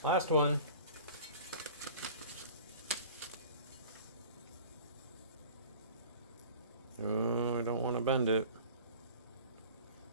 Last one. Oh, I don't want to bend it.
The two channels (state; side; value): inverted; both; correlation -0.42